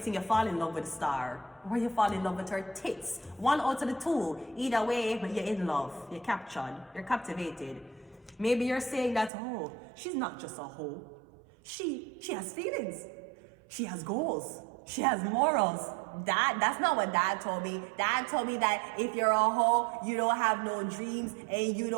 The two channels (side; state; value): left; drops out; at 9.3 s